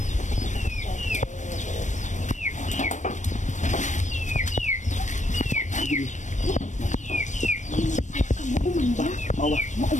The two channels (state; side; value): late; right; 0.35 ms